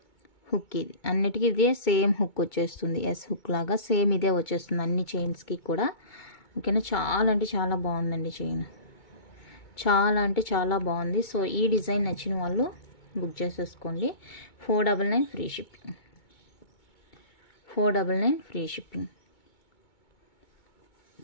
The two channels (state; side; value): late; right; 2.2 ms